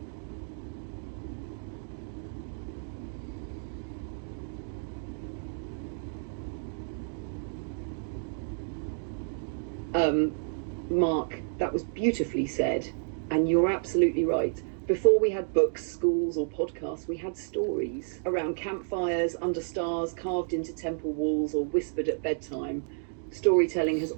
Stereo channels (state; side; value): silent; left; digital silence